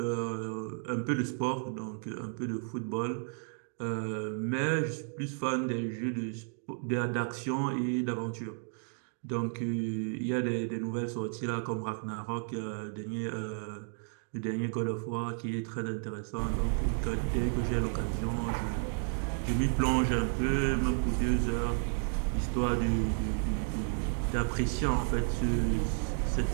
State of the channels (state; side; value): silent; left; 56 dB below the other